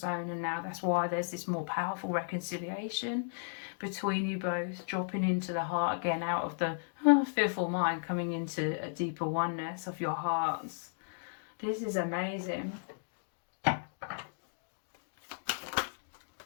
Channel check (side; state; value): right; silent; digital silence